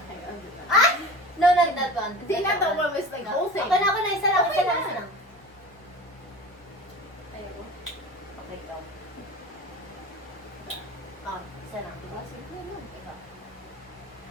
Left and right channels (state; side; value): normal; both; correlation 0.35